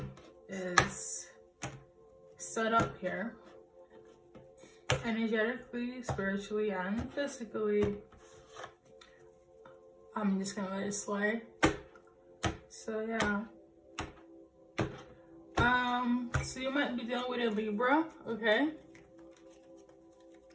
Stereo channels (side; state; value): both; identical; correlation 1.00